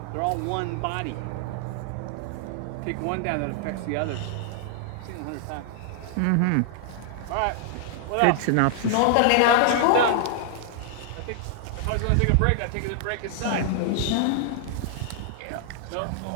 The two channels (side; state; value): both; different; correlation -0.01